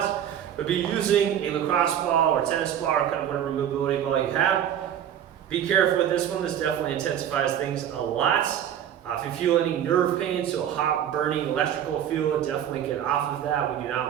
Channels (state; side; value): quieter; left; 10.0 dB